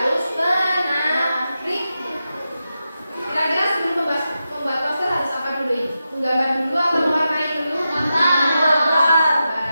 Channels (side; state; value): both; inverted; correlation -0.89